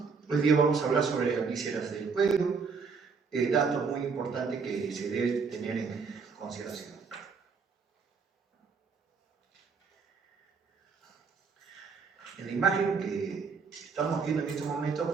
Hoy día vamos a hablar sobre las vísceras del cuello, datos muy importantes que se debe tener en consideración. En la imagen que estamos viendo en este momento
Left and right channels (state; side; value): quieter; left; 5.3 dB